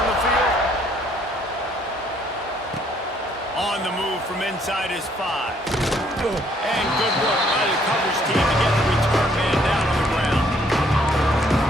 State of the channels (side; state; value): both; normal; correlation 0.65